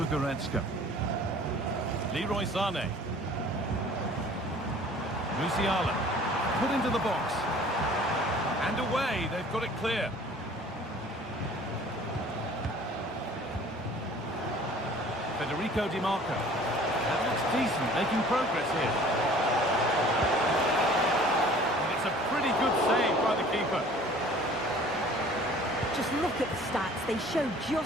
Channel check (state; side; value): normal; both; correlation 0.49